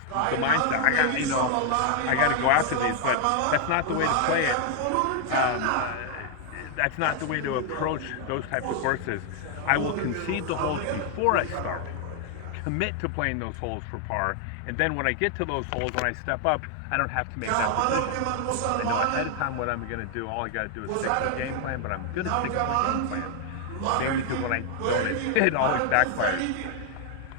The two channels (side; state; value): both; different; correlation 0.00